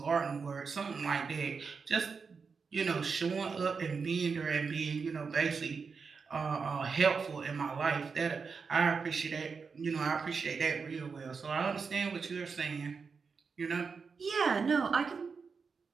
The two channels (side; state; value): left; quieter; 5.3 dB